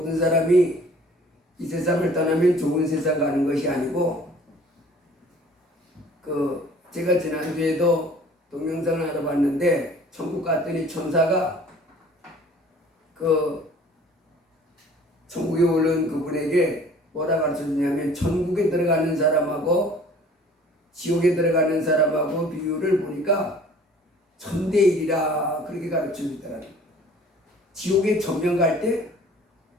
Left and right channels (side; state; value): both; normal; correlation 0.51